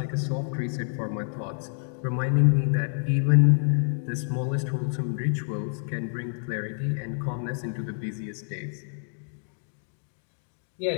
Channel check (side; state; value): right; silent; digital silence